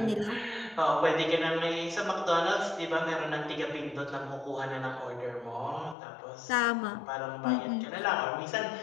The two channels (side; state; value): right; drops out; at 6.0 s